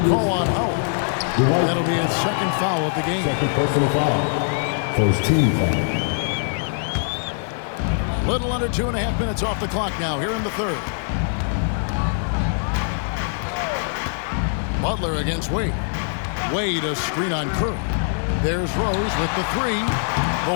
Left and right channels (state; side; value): silent; right; digital silence